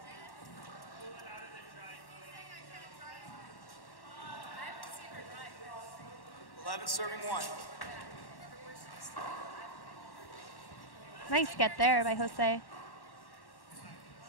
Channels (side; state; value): right; late; 1.1 ms